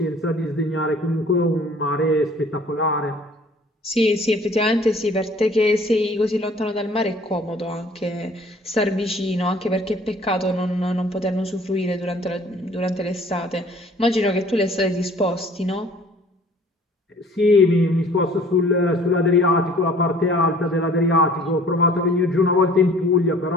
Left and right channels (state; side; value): normal; both; correlation 0.52